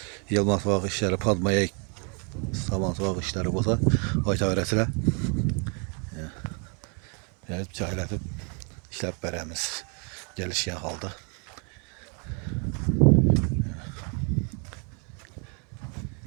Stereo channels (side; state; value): left; quieter; 37.0 dB